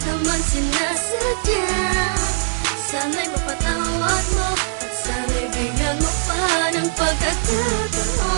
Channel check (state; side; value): silent; left; 65 dB below the other